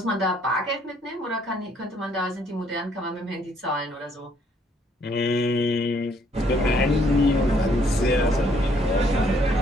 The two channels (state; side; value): normal; both; correlation 0.66